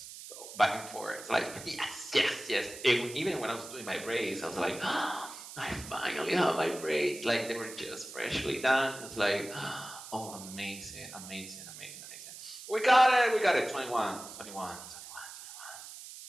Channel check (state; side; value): noise; right; hiss, 13 dB below the sound